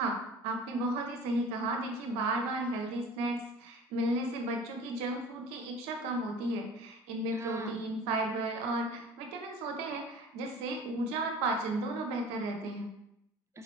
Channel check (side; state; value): both; normal; correlation 0.42